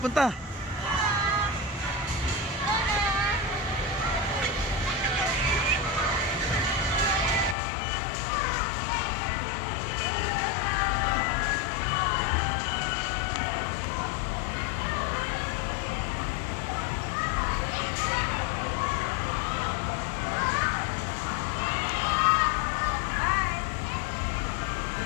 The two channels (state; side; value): drops out; right; at 7.6 s